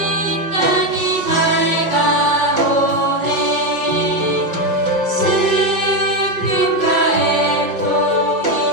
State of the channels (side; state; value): left; late; 5.5 ms